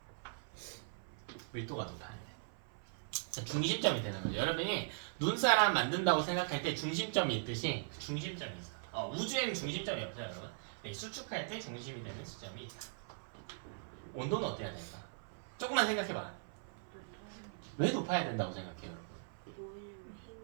밀도가 높아야 돼. 자, 중심점이 되는 거죠. 여러분이 눈사람 만든다고 생각할 때 중심점이 있듯이 그 중심점이 있어. 우주에는 중심점이 없어요, 여러분. 네, 수축할 때 중심이 되는 수점이 있다. 온도는 어때야 될까? 조금만 생각해봐. 왜 높아야 된다고 생각해요, 여러분? 뭐냐면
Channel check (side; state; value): left; silent; 51 dB below the other